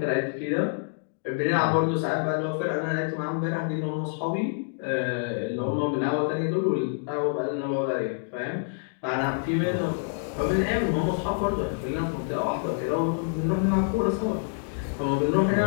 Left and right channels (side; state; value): right; silent; digital silence